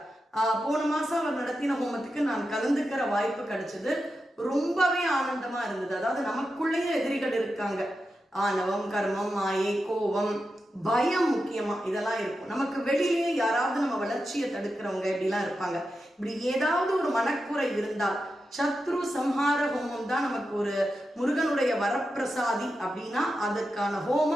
போன மாசம் அவர் நடத்தின ஹோமத்துக்கு நான் கலந்துக்கிற வாய்ப்பு கிடைச்சது. ரொம்பவே ஆனந்தமா இருந்தது. அதாவது நமக்குள்ளேயே எதிரிகள் இருக்காங்க. ஆணவம், கர்மம், மாயை, கோபம், பயம் முக்கியமா இதெல்லாம் இருக்கும். நமக்கு வெளியிலேயே யாராவது நம்ம வளர்ச்சியை தடுக்கிறவங்க இப்படிலாம் இருப்பாங்க. இப்படி ஏதாவது ஒரு மனக்குறை இருந்தால் சத்ரு சம்ஹார ஹோமம் தான் நமக்கு ஒரு முருகனுடைய வரப்பிரசாதி அப்படின்னா அதுக்கான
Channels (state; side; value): normal; both; correlation 0.89